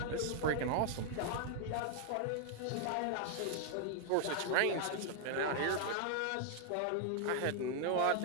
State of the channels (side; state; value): both; different; correlation 0.00